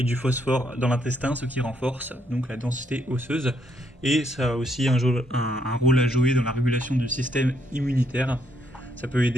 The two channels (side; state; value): both; normal; correlation 0.73